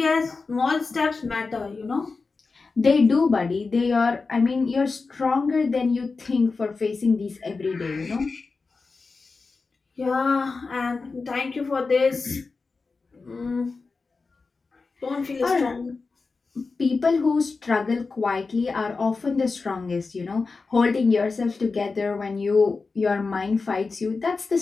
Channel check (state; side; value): quieter; right; 4.2 dB